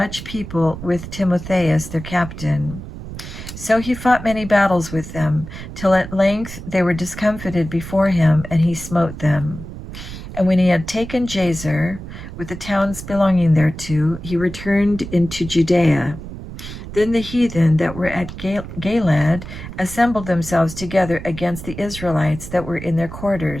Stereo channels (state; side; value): noise; right; rumble, 11 dB below the sound